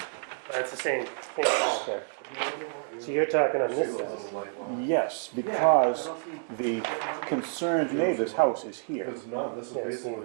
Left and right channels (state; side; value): silent; left; digital silence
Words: That's the same thing. Okay. So you're talking on See this the side. little light line? Yes, because the concerned neighbor's house is here. Because none, this is Yeah, so basically.